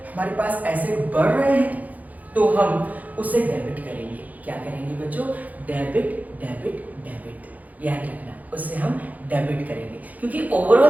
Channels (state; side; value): late; left; 0.078 ms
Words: हमारे पास एसेट बढ़ रहे हैं, तो हम उसे डेबिट करेंगे। क्या करेंगे बच्चों? डेबिट डेबिट डेबिट, याद रखना, उससे हम डेबिट करेंगे। क्योंकि